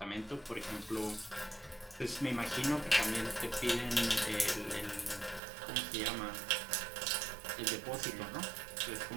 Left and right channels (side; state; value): left; drops out; at 5.4 s